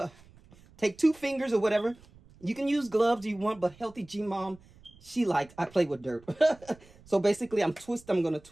2 fingers or whatever. You can use gloves if you want, but Healthy G Mom, I play with dirt. So basically, I'm going to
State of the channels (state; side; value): noise; right; rumble, 25 dB below the sound